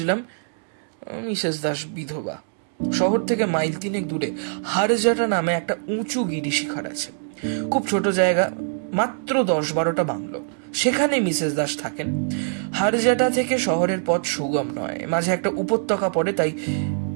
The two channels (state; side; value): silent; left; digital silence